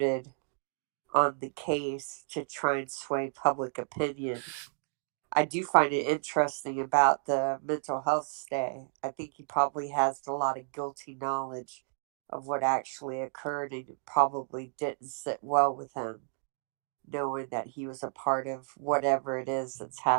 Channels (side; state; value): left; silent; 57 dB below the other